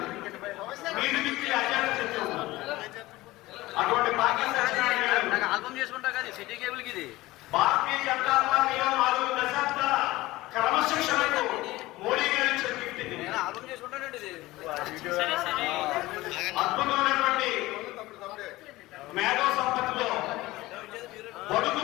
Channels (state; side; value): quieter; right; 18.7 dB